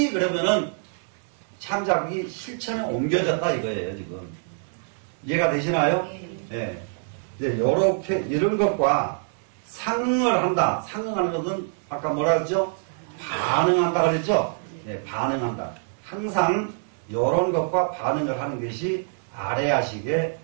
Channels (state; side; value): silent; left; 60 dB below the other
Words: 그러면은 창작이 실천에 옮겨졌다 이거예요 지금. 이해가 되시나요? 예. 이제 요렇게 이런 것과 상응을 한다. 상응하는 것은 아까 뭐라 그랬죠? 반응한다 그랬죠? 예, 반응한다. 항상 요런 것과 반응을 하는 것이 아래아식의